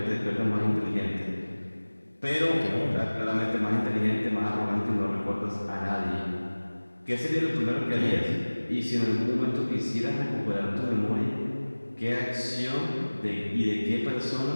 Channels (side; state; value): both; inverted; correlation -1.00